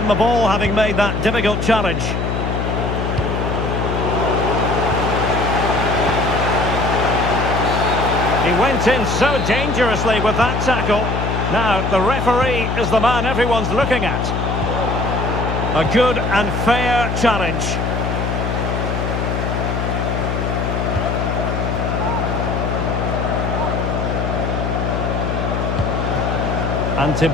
the ball, having made that difficult challenge. He went in so dangerously with that tackle. Now, the referee is the man everyone's looking at. A good and fair challenge. Ante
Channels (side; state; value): left; noise; hum, 1 dB below the sound